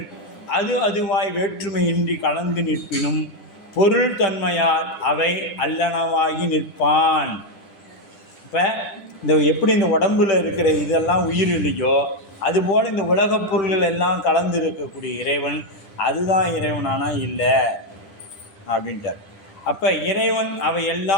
அது அதுவாய் வேற்றுமையின்றி கலந்து நிற்பினும் பொருள் தன்மையால் அவை அல்லனவாகி நிற்பான். இப்போ இந்த எப்படி இந்த உடம்பில் இருக்கிற இதெல்லாம் உயிர் இல்லையோ, அதுபோல் இந்த உலகப் பொருள்கள் எல்லாம் கலந்து இருக்கக்கூடிய இறைவன் அதுதான் இறைவனானா இல்லை அப்படின்ட்டார். அப்போ இறைவன் அவை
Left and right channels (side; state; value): right; late; 10 ms